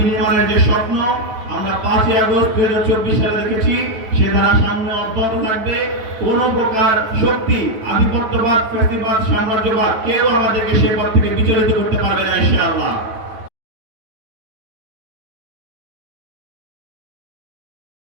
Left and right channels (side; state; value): left; late; 9.2 ms